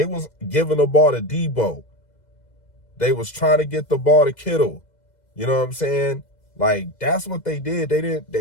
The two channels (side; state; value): right; late; 2.0 ms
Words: was giving the ball to Debo. They was trying to get the ball to Kittle. You know what I'm saying? Like, that's what they did.